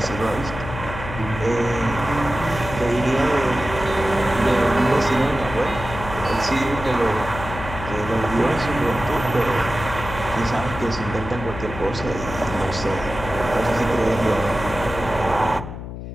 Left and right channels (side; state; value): left; noise; hum, 9 dB below the sound